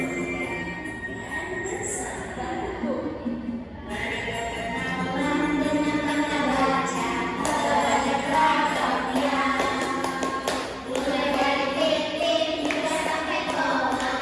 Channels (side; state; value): both; identical; correlation 1.00